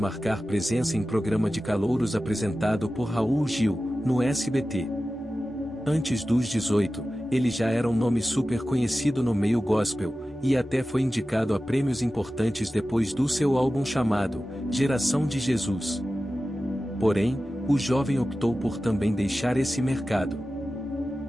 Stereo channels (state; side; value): normal; both; correlation 0.94